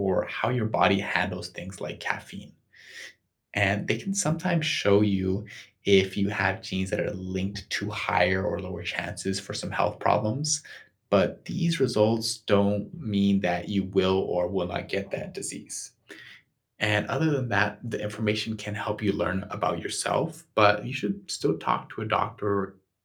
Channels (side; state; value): both; identical; correlation 1.00